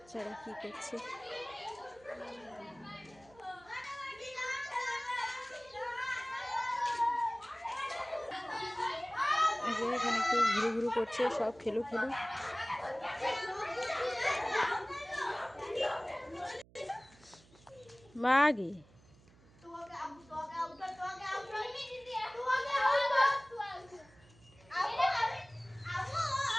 কি করছে। এখানে একটু ঘুরু ঘুরু করছে, সব খেলু খেলু। মাগি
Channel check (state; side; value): noise; right; hum, 26 dB below the sound